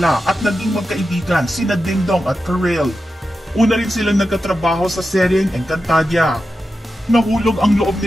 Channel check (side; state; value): both; normal; correlation 0.90